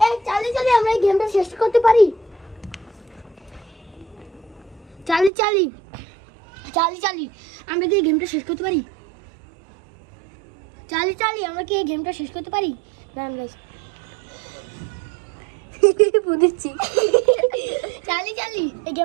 এই চালি চালি আমরা এই গেমটা শেষ করতে পারি? চালি চালি চালি চালি আমরা কি এই গেমটা শেষ করতে পারি? চালি চালি আমরা কি এই গেমটা শেষ করতে পারি? দাঁড়ান গাইস, বুঝছি। চালি চালি এই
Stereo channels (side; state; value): left; drops out; at 5.3 s